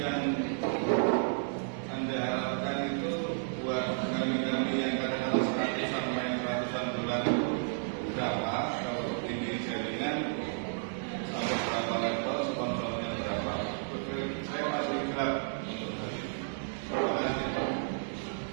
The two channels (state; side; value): silent; left; digital silence